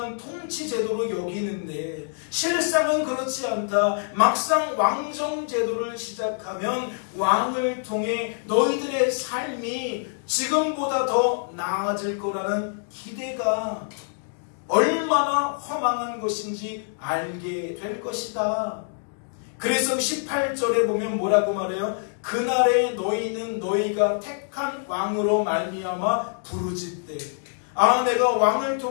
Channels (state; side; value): silent; right; digital silence